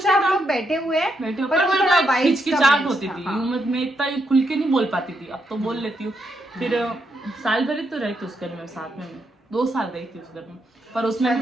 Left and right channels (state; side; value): normal; both; correlation 0.80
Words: से आप नहीं था। लोग बैठे हुए हैं, बैठे पर पर वो थोड़ा vibes हिचकिचाहट का होती match थी। था, हाँ। मैं इतना खुल के नहीं बोल पाती थी, अब तो बोल लेती हूँ। फिर साल भर ही तो रही थी उस घर में साथ में, 2 साल रही थी उस घर में, पर उसमें